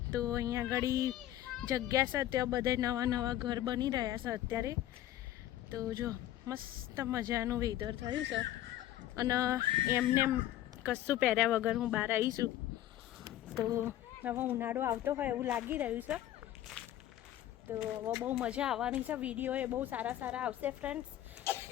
તો અહીંયા આગળ જગ્યા છે, ત્યાં બધા નવા નવા ઘર બની રહ્યા છે અત્યારે. તો જો મસ્ત મજાનું વેધર થયું છે. અને એમને કશું પહેર્યા વગર હું બહાર આવીશું. તો હવે ઉનાળો આવતો હોય એવું લાગી રહ્યું છે. તો હવે બહુ મજા આવવાની છે. વિડીયો એ બહુ સારા સારા આવશે ફ્રેન્ડ્સ.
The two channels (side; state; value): right; quieter; 13.2 dB